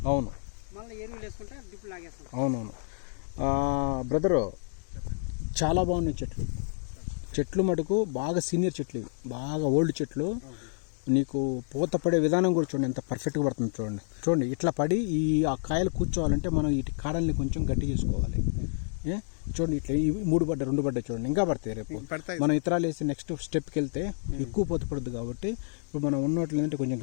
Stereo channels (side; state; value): right; silent; digital silence